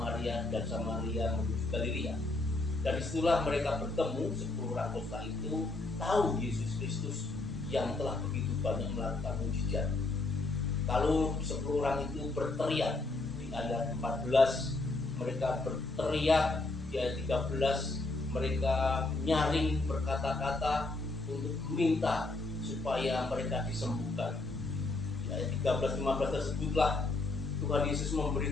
dan Samaria menuju Galilea. Dan disitulah mereka bertemu, 10 orang kusta itu tahu Yesus Kristus yang telah begitu banyak melakukan mukjizat. Kalau 10 orang itu berteriak, di ayat 14 mereka berteriak, di ayat 13 mereka nyaring berkata-kata untuk meminta supaya mereka disembuhkan. Di ayat 13-15 tersebutlah Tuhan Yesus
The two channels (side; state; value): right; quieter; 3.2 dB